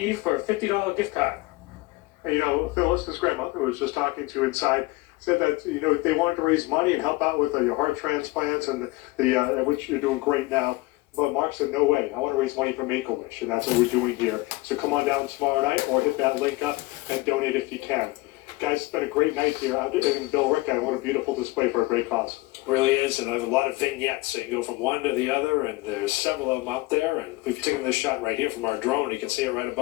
for a $50 gift card. And, Phyllis, his grandmother, who was just talking to inside, said that, they wanted to raise money and help out with your heart transplants and which you're doing great now. But Mark said, no way, I want to raise money for Make-A-Wish, and that's what we're doing here. So come on down tomorrow night or hit that link up and donate if you can. Guys, it's been a great night here in Bill Ricca, and what a beautiful display for a great cause. Really is, and there's a lot of vignettes, so you can go from one to the other, and there's several of them up there, and we've taken this shot right here from our drone. You can see it right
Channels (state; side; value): quieter; right; 21.3 dB